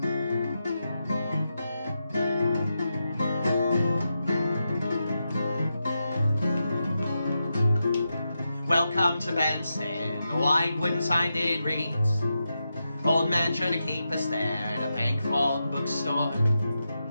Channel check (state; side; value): inverted; both; correlation -0.88